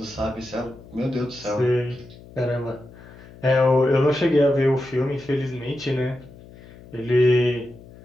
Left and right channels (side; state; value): left; noise; hum, 20 dB below the sound